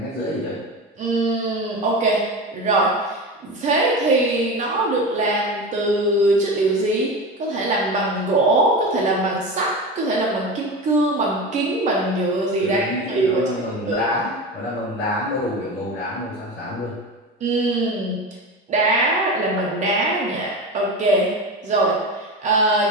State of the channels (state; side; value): normal; both; correlation 0.26